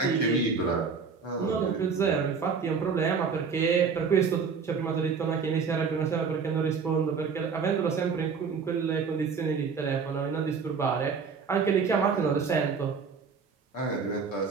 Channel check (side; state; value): left; quieter; 5.6 dB